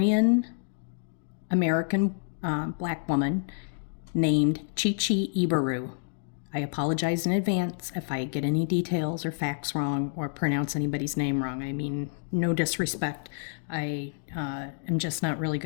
American black woman named Chichi Ibaru. I apologize in advance if I get any details or facts wrong or pronounce anybody's name wrong. I mean, no disrespect. I am just not really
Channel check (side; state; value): right; silent; digital silence